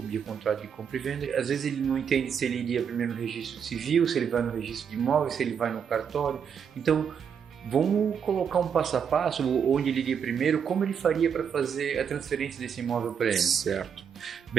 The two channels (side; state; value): left; quieter; 7.4 dB